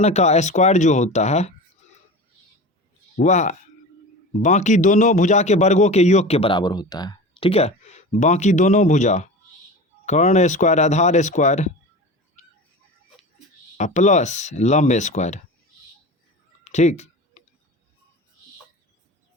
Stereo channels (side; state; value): both; normal; correlation 0.31